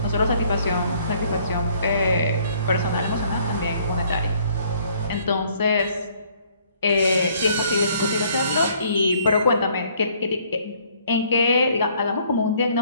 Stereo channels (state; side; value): inverted; both; correlation -0.62